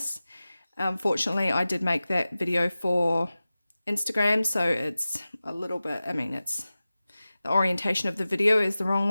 Fortunately I did make that video for Instagram, so it's a little bit, I mean, it's the orientation of the video is the wrong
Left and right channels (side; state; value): both; inverted; correlation -0.96